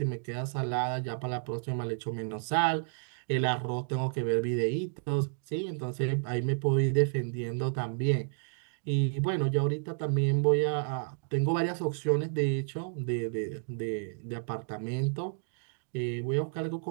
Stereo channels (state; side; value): silent; left; digital silence